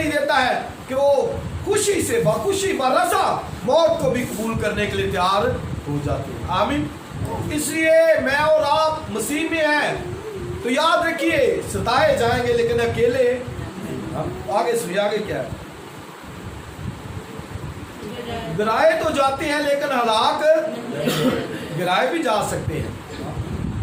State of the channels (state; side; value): identical; both; correlation 1.00